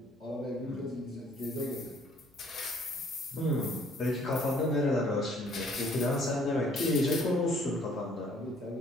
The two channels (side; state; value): both; normal; correlation 0.60